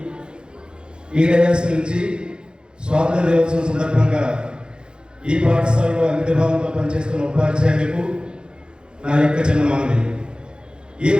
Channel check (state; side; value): late; left; 0.049 ms